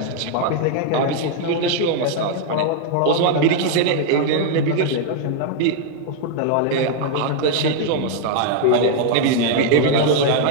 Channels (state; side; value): different; both; correlation 0.00